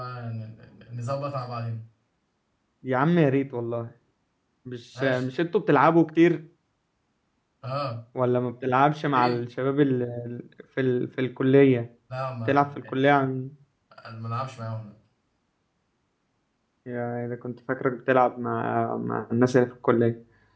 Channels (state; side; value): identical; both; correlation 1.00